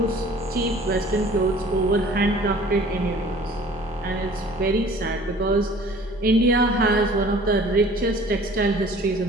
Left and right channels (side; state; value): left; noise; rumble, 24 dB below the sound